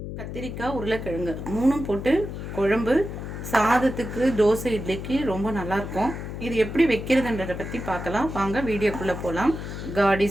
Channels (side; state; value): left; noise; hum, 7 dB below the sound